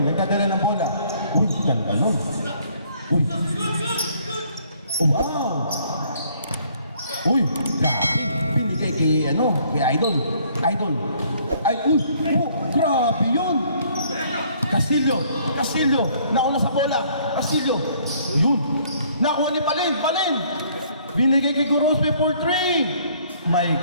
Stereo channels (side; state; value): both; inverted; correlation -0.62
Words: nagdadala ng bola. Uy, ganda nun. Uy. Oh, wow. Uy, grabe. Binigay kay Idol. Ay, uy, oh, grabe yun. Castillo, nauna sa bola. Castillo, yun. Nakuha ni Balen. Binigay kay Gorospe for 3. My